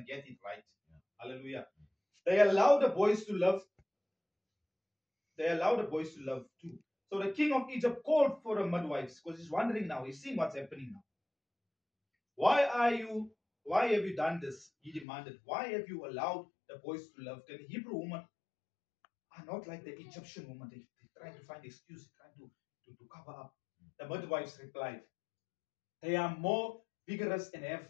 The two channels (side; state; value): right; drops out; at 15.1 s